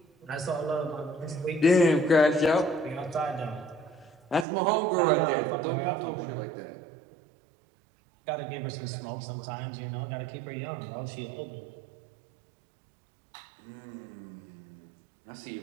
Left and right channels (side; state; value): left; drops out; at 4.5 s